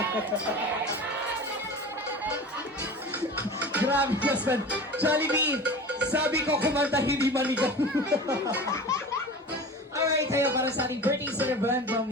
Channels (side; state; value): both; normal; correlation 0.35